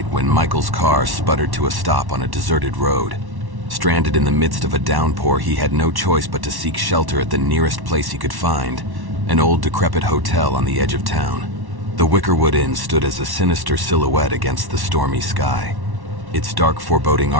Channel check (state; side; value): late; left; 1.1 ms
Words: when Michael's car sputtered to a stop on a deserted road. Stranded in the midst of a downpour, he had no choice but to seek shelter at the nearest place he could find, an old decrepit hotel on the edge of town. The Wickerwood Inn stood as a sinister silhouette against the stormy sky. Its dark, foreboding